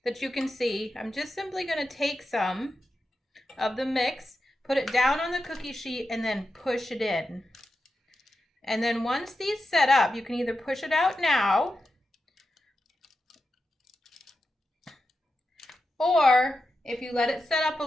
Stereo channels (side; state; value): both; normal; correlation 0.90